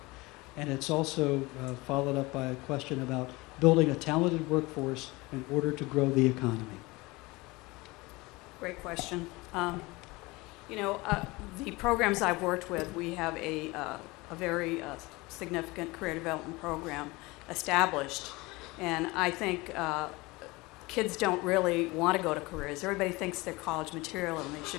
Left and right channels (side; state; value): right; quieter; 22.8 dB